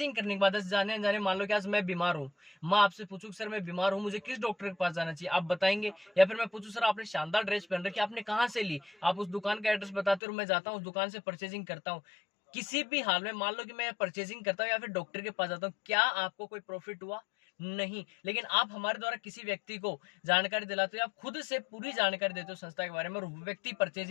करने के बाद जाने जाने मान लो कि आज मैं बीमार हूँ, मैं आपसे पूछूं सर मैं बीमार हूँ, मुझे किस डॉक्टर के पास जाना चाहिए, आप बताएंगे। या फिर मैं पूछूं सर आपने शानदार ड्रेस पहन रखी, आपने कहाँ से ली, आप उस दुकान का एड्रेस बताते हो, मैं जाता हूँ उस दुकान से परचेजिंग करता हूँ। किसी भी हाल में मान लो कि मैं परचेजिंग करता हूँ या फिर डॉक्टर के पास जाता हूँ, क्या आपको कोई प्रॉफिट हुआ? नहीं। लेकिन आप हमारे द्वारा किसी व्यक्ति को जानकारी दिलाते हो, आप खुद से पूरी जानकारी देते हो संस्था के बारे में, और व्यक्ति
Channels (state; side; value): drops out; right; at 10.2 s